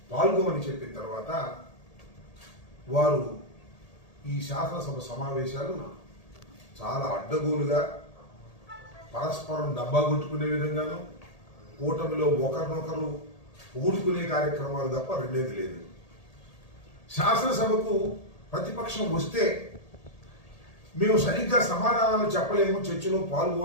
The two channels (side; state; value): right; late; 1.8 ms